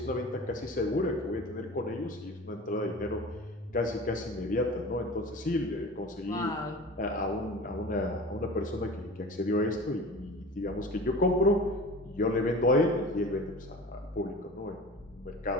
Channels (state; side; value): normal; both; correlation 0.37